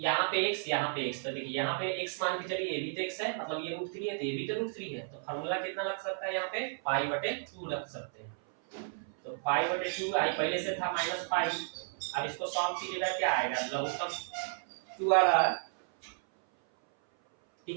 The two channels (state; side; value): silent; left; 56 dB below the other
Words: पे x, यहाँ पे x, तो देखिए यहाँ पे x मान के चलिए, ये भी तो x है, मतलब ये √3 है तो ये भी तो √3 है, तो फार्मूला कितना लग सकता है यहाँ पे पाई बटे 2 रख सकते हैं। तो पाई बटे 2 आई पहले से था -पाई, अब इसको सॉल्व कीजिएगा क्या आएगा लघुत्तम 2 आ रहा है,